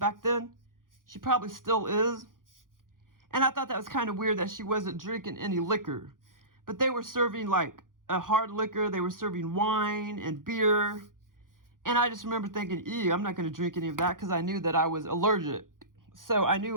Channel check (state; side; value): late; left; 0.90 ms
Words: then. She probably still is. And I thought that was kind of weird that she wasn't drinking any liquor. But they were serving like a hard liquor. They were serving wine and beer. And I just remember thinking, ew, I'm not going to drink any of that because I knew that I was allergic. So I